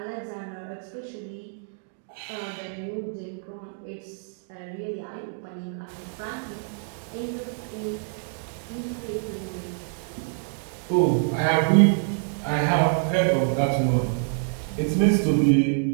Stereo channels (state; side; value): silent; left; digital silence